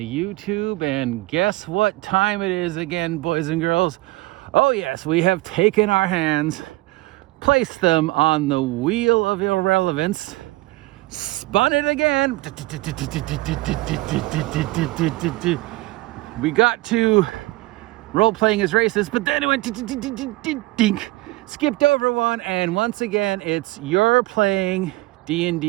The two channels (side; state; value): left; quieter; 20.7 dB